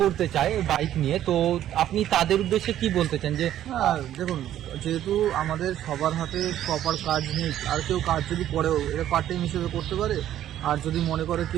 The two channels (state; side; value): quieter; left; 11.8 dB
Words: করতে চায় বাইক নিয়ে, তো আপনি তাদের উদ্দেশ্যে কি বলতে চান? যে হ্যাঁ দেখুন, যেহেতু আমাদের সবার হাতে প্রপার কাজ নেই, আর কেউ কাজ যদি করেও এটা পার্ট টাইম হিসেবে করতে পারে। আর যদি মনে করে